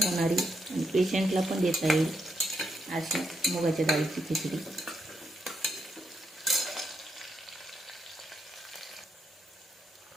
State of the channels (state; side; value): normal; both; correlation 0.80